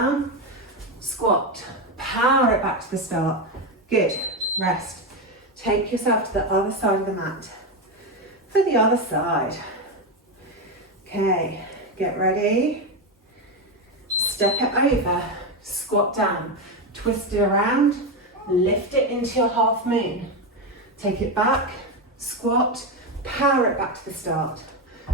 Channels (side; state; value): both; normal; correlation 0.11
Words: squat, power it back to the start. Good, rest. Take yourself to the other side of the mat. For the other side. Okay, get ready. Step it over, squat down, twist it around, lift it into your half moon. Take it back, squat, power it back to the start.